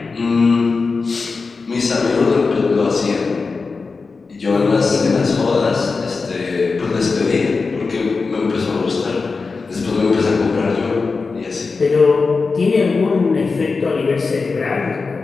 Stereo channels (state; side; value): quieter; right; 4.4 dB